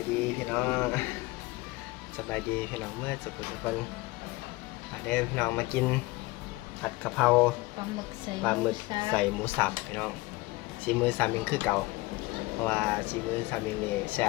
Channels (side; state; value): right; quieter; 21.7 dB